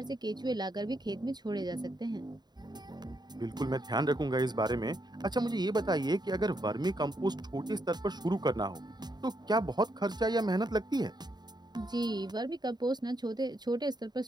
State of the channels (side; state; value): left; late; 0.20 ms